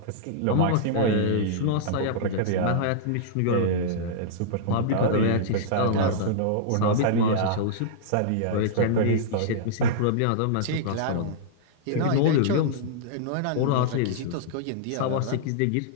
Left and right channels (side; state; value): both; different; correlation -0.02